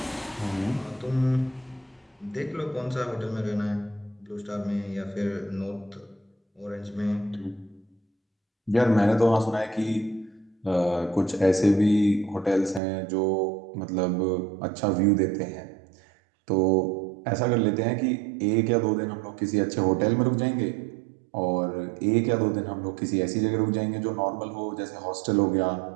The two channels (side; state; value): left; drops out; at 12.8 s